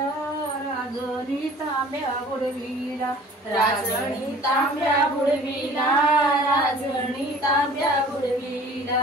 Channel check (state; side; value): normal; both; correlation 0.49